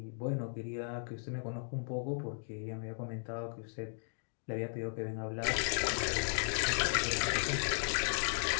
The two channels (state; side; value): silent; right; digital silence